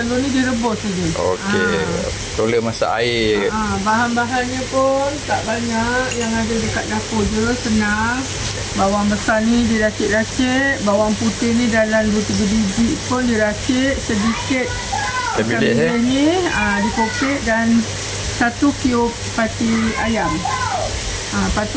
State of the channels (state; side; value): identical; both; correlation 1.00